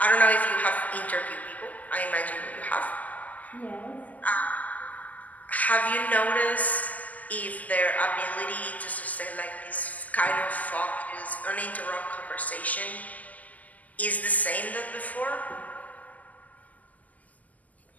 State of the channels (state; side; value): late; right; 0.078 ms